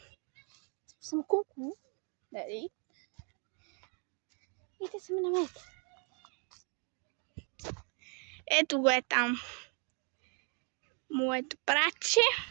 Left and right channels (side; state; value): left; quieter; 38.8 dB